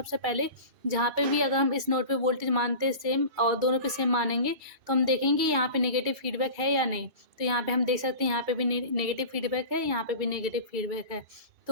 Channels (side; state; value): left; late; 2.2 ms